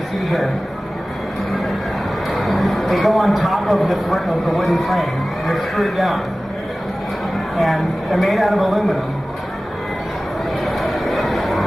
see here. They go on top of the wooden frame. They're screwed down. And they're made out of aluminum.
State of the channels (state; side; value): normal; both; correlation 0.97